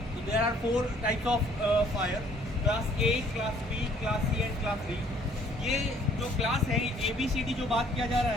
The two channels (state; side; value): normal; both; correlation 0.60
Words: तो there are 4 types of fire, class A, class B, class C and class D. ये जो क्लास है, ABCD जो बात किया जा रहा